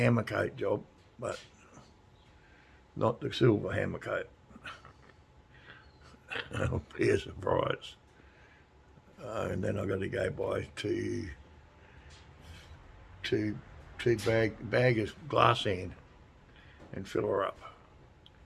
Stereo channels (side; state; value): both; identical; correlation 1.00